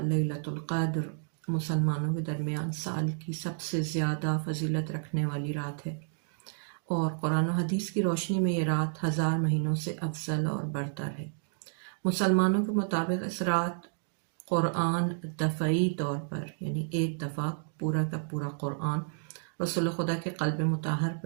لیلۃ القدر مسلمانوں کے درمیان سال کی سب سے زیادہ فضیلت رکھنے والی رات ہے، اور قرآن و حدیث کی روشنی میں یہ رات 1000 مہینوں سے افضل اور برتر ہے۔ مسلمانوں کے مطابق اس رات قرآن دفعی طور پر یعنی ایک دفعہ پورا کا پورا قرآن رسول خدا کے قلب مطہر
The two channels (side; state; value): left; silent; digital silence